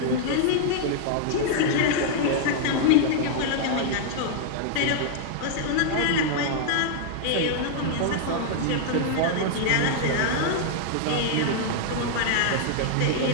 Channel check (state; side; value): different; both; correlation -0.01